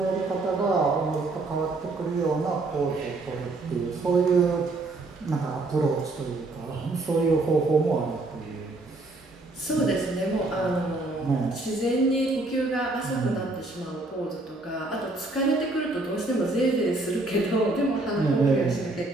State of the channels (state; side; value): quieter; left; 3.1 dB